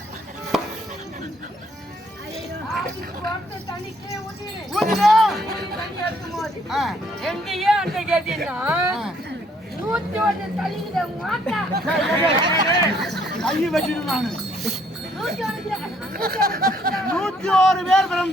எங்கேயே அந்த கேட்டீங்கன்னா 101 தள்ளிக்கிட்ட மாட்டா கையை வச்சிட்டு நானு 101 பேர்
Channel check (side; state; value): both; normal; correlation 0.66